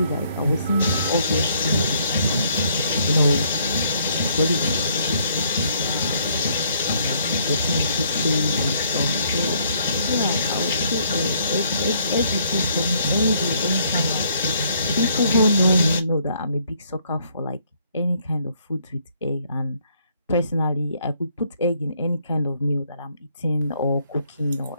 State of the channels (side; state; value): both; inverted; correlation -0.67